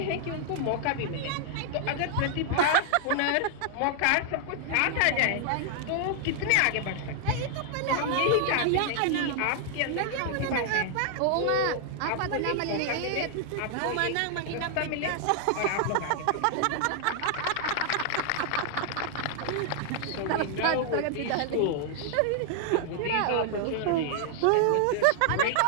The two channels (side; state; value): both; different; correlation 0.00